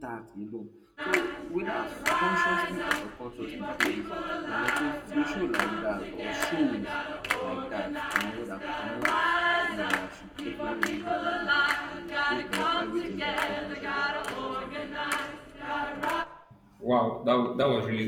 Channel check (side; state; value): both; identical; correlation 1.00